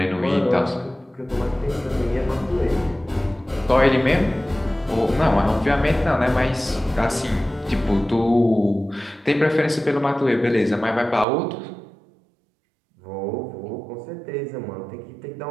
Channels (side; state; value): left; drops out; at 11.2 s